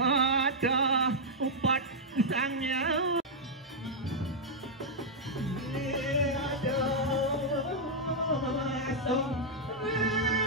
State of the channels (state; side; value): normal; both; correlation -0.05